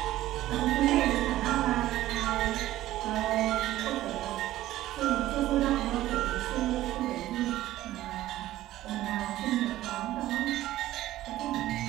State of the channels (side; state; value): left; quieter; 14.9 dB